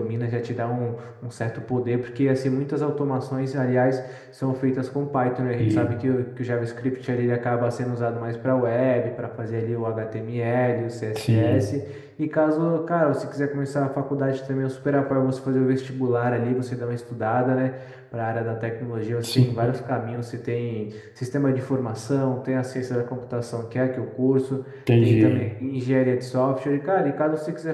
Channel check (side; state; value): both; identical; correlation 1.00